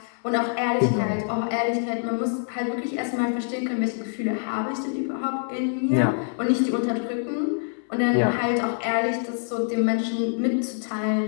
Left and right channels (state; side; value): silent; right; digital silence